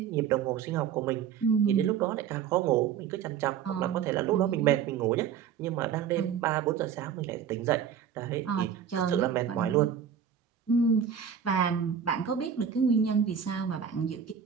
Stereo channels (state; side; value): quieter; left; 8.0 dB